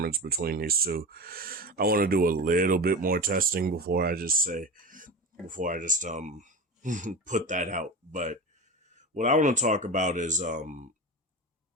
between these two. I want to do a little bit more testing before I just put that out. But what I want to talk about is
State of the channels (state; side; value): normal; both; correlation 0.27